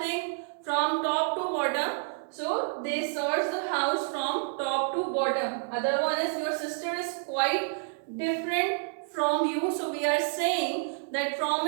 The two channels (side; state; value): left; silent; digital silence